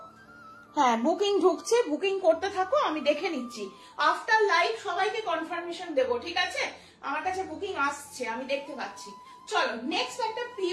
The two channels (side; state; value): both; identical; correlation 1.00